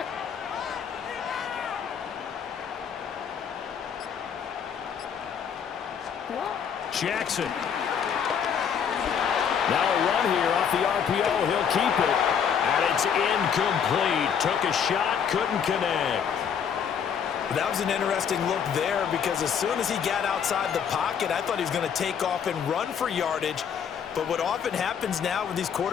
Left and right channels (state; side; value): quieter; right; 7.6 dB